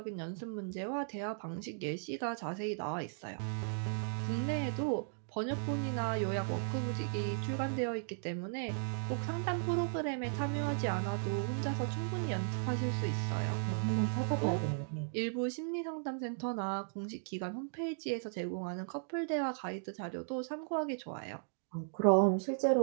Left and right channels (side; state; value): left; silent; digital silence